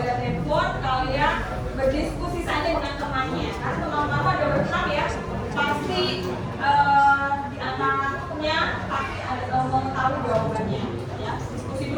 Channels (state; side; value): identical; both; correlation 1.00